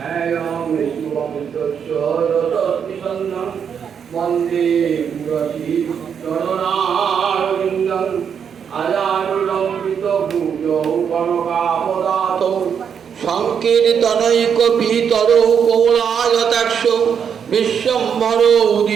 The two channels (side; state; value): left; quieter; 7.4 dB